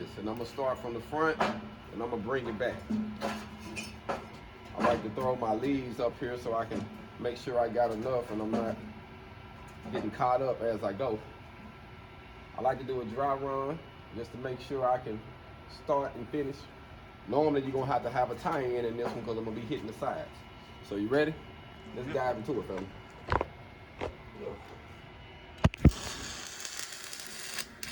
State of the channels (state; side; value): identical; both; correlation 1.00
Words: And I'm gonna start from the front, and I'm gonna bring it back. I like to throw my leaves up here so I can make sure I got enough and I'm not getting caught up as I go. I like to do a dry run just to make sure I can start and finish. Normally you're gonna have a tie-in in this one because I'm gonna be hitting the sides. So you ready? Let's dive into it, fella.